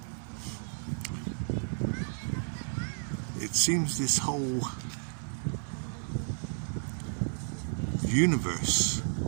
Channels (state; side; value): silent; left; 56 dB below the other